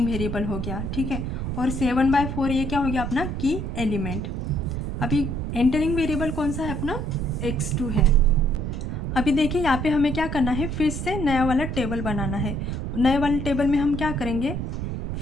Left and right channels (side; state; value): right; noise; rumble, 4 dB below the sound